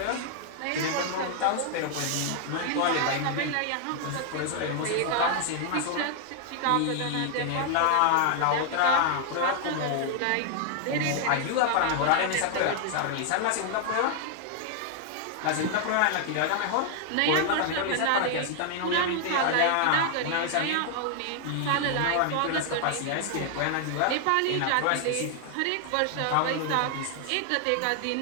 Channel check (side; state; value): both; different; correlation 0.00